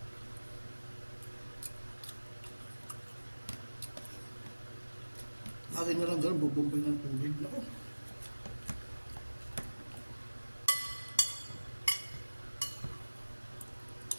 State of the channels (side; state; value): both; inverted; correlation -1.00